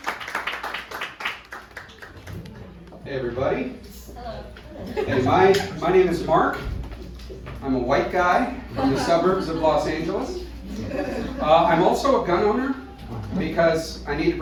Hey everybody. Hey, my name is Mark. I'm a white guy from the suburbs of Los Angeles. I'm also a gun owner because I need to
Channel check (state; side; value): identical; both; correlation 1.00